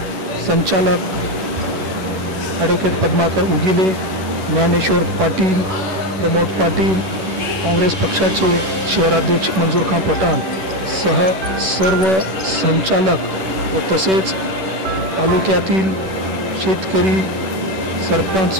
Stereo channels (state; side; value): late; left; 11 ms